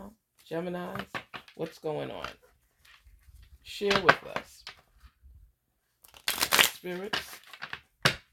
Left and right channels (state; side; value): identical; both; correlation 1.00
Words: Geminis? What's going on? Share with us. Spirits,